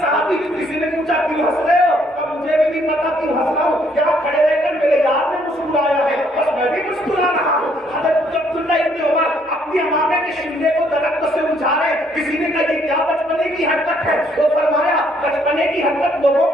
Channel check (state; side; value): normal; both; correlation 0.67